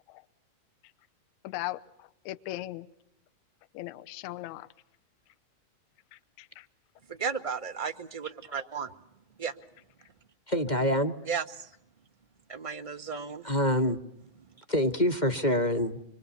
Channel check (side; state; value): right; late; 2.1 ms